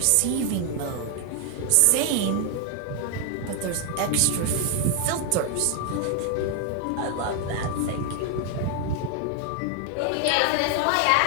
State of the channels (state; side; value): different; both; correlation 0.00